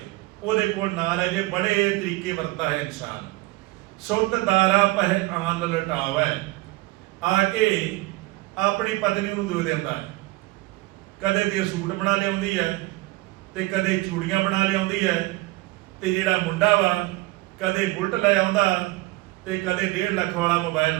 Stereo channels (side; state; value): left; quieter; 20.5 dB